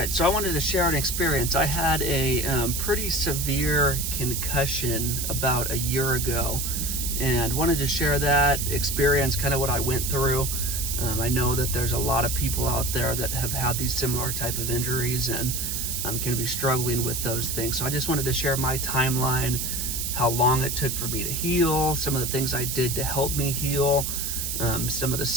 so I wanted to share an experience. I had a pretty severe concussion about a year ago, and wanted to share that experience, kind of what I went through. I know that there's a lot of people out there that have had these similar type of injuries and can be struggling with those things. So I just wanted to share my timeline, how long it took for me to heal, some of the things I did to help me heal, some of the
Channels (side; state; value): right; noise; hiss, 2 dB below the sound